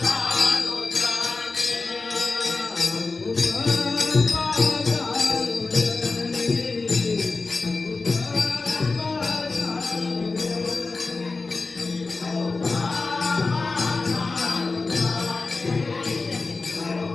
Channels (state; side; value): quieter; right; 3.8 dB